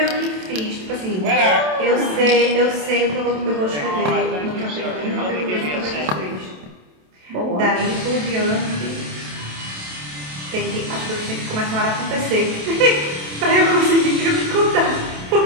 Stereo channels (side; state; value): left; late; 27 ms